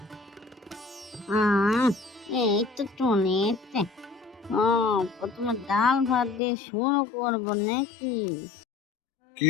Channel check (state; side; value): drops out; right; at 6.4 s